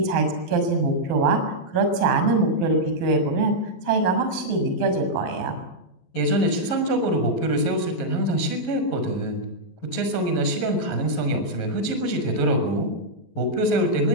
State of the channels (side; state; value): right; late; 12 ms